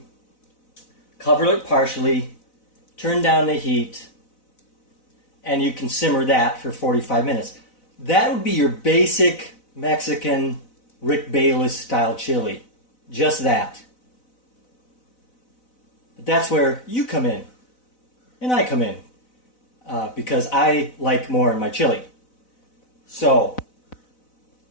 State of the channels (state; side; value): late; right; 4.0 ms